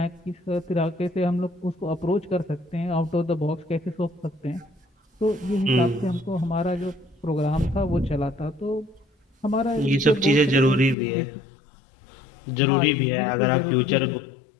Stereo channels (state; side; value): drops out; right; at 11.0 s